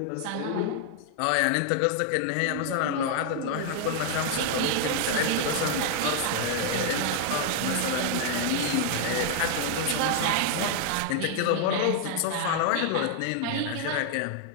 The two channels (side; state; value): both; different; correlation 0.00